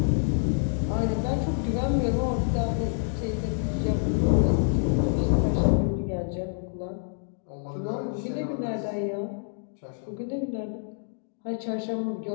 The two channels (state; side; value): silent; right; digital silence